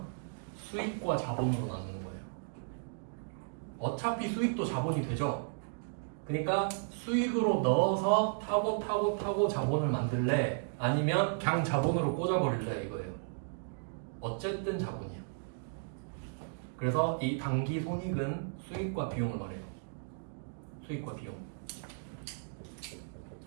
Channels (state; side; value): silent; left; digital silence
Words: 수익과 자본으로 나누는 거예요. 어차피 수익도 자본이 되죠. 그러니까 수익으로 넣어서 타고 자본을 만들래? 아니면 그냥 자본으로 꽂아버릴래? 이거예요. 어쨌든 자본이에요. 그래서 이 단기 손익은 수익과 비용을 말해요. 수익과 비용.